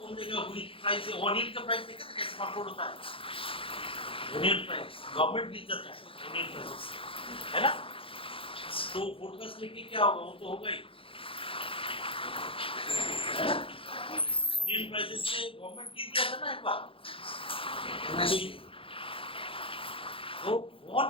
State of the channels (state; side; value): late; right; 0.26 ms